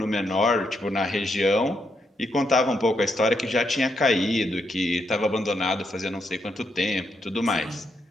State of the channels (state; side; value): normal; both; correlation 0.79